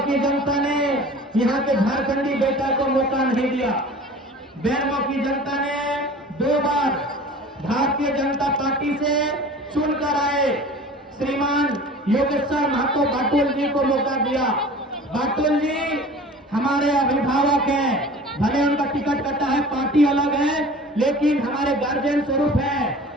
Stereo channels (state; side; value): normal; both; correlation 0.42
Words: की जनता ने यहाँ के झारखंडी बेटा को मौका नहीं दिया। बेरमो की जनता ने 2 बार भारतीय भारतीय जनता पार्टी से चुनकर आए श्रीमान योगेश्वर महतो बाटुल जी को मौका दिया। बाटुल जी हमारे अभिभावक हैं, भले उनका टिकट कटा है, पार्टी अलग है, लेकिन हमारे गार्जियन स्वरूप है।